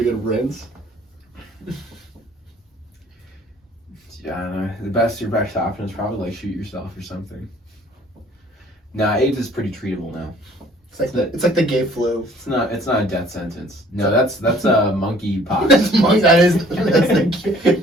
rinse. Yeah, I don't know. Your best option is probably like shoot yourself or something. Nah, AIDS is pretty treatable now. It's like the gay flu. It's not a death sentence. No, that's a monkey pox. That's the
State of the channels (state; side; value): normal; both; correlation 0.56